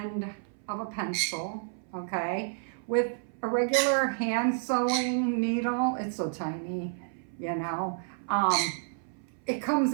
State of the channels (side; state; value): left; silent; 58 dB below the other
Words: of a pencil, okay, with a regular hand sewing needle. It's so tiny, you know. It comes